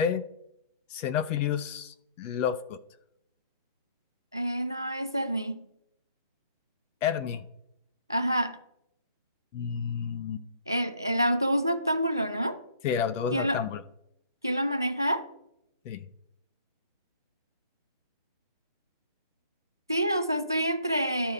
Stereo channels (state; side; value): inverted; both; correlation -0.59